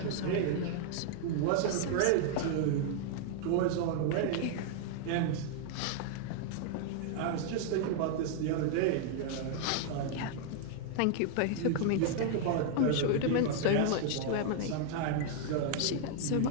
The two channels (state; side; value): different; both; correlation 0.00